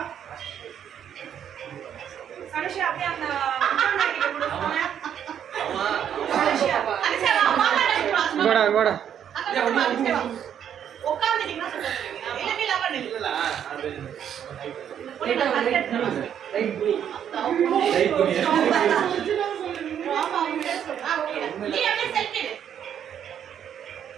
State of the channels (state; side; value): quieter; left; 9.2 dB